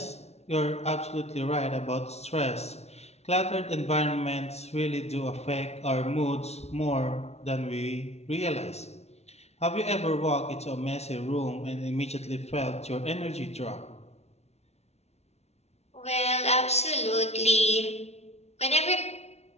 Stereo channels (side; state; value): right; late; 0.31 ms